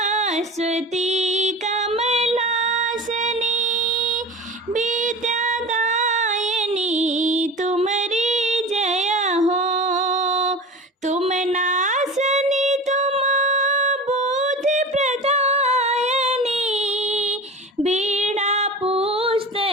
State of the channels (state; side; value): normal; both; correlation 0.33